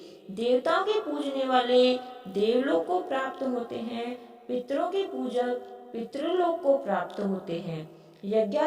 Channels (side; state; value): both; identical; correlation 1.00